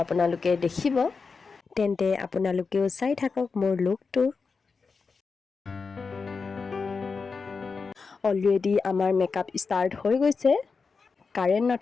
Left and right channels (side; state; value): right; quieter; 4.8 dB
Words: দেখিব তেন্তে আপোনালোকেও চাই থাকক মোৰ লুকটো অলৰেডি আমাৰ মেকআপ ষ্টাৰ্ট হৈ গৈছে কাৰেণ্ট